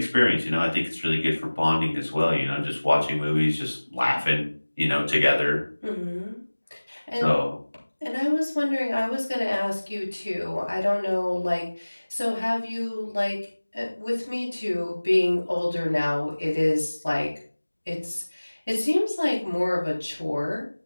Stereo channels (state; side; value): inverted; both; correlation -1.00